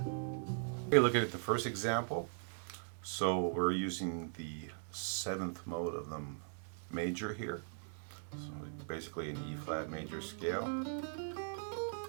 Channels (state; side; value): silent; left; digital silence